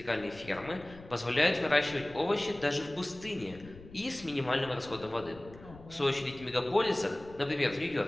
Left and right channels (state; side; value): noise; left; rumble, 19 dB below the sound